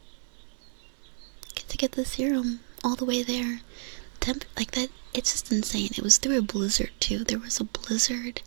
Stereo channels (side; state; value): left; silent; digital silence